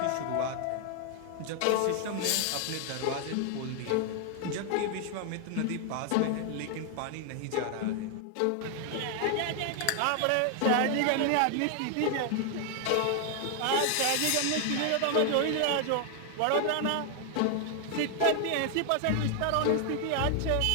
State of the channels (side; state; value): both; different; correlation 0.00